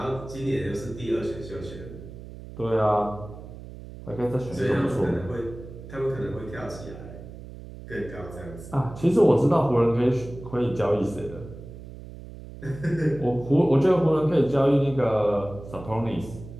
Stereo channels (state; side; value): noise; right; hum, 14 dB below the sound